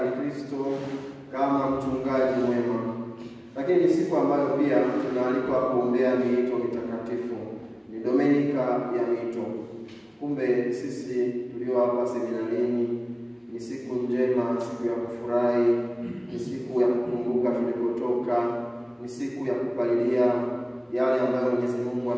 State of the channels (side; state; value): both; identical; correlation 1.00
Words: Kristo kama mchungaji mwema. Lakini ni siku ambayo pia tunaalikwa kuombea miito mitakatifu. Ni Dominika ya miito. Kumbe sisi tulio hapa seminarini, ni siku njema, siku ya kufurahi, ni siku ya kukumbuka tulipotoka, ni siku ya kupalilia yale ambayo Mwenyezi Mungu